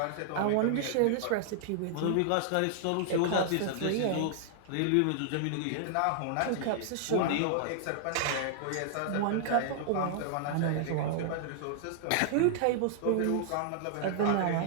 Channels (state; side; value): different; both; correlation -0.01